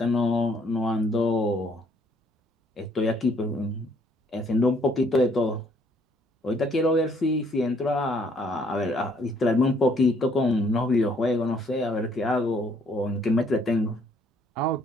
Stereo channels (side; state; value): both; normal; correlation 0.64